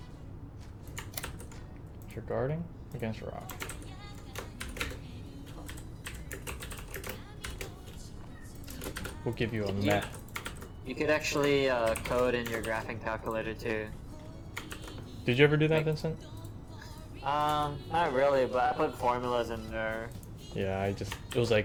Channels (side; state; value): both; identical; correlation 1.00